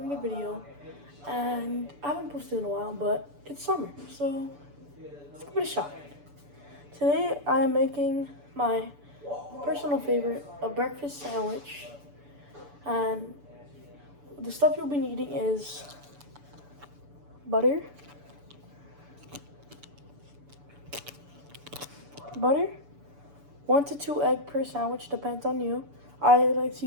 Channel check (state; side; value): late; left; 6.9 ms